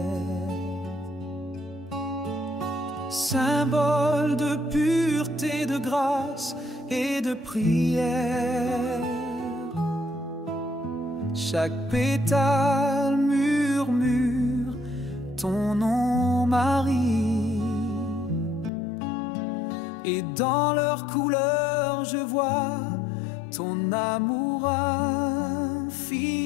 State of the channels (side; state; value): right; drops out; at 18.7 s